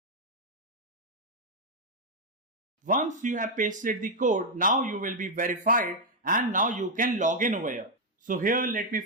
Once you have pasted the code, now you will be verified and now you can log in over here. So here let me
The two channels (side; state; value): both; normal; correlation 0.00